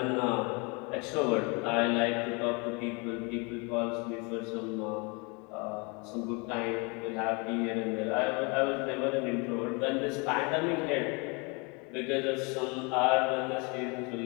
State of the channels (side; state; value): right; quieter; 30.8 dB